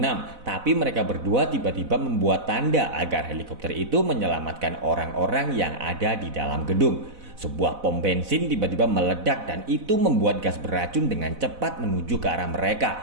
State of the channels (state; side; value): late; left; 4.0 ms